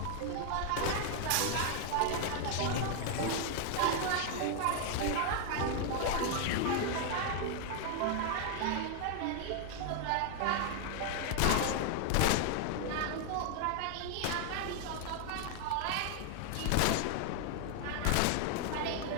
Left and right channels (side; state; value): both; different; correlation 0.00